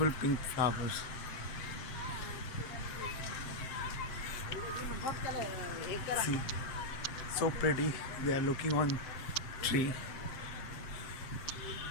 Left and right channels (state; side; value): late; right; 7.5 ms